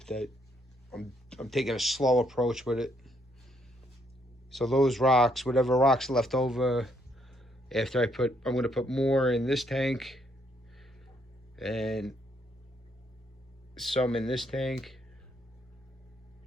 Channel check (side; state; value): both; normal; correlation 0.72